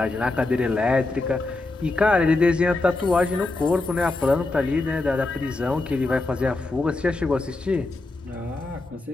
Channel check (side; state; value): right; quieter; 3.1 dB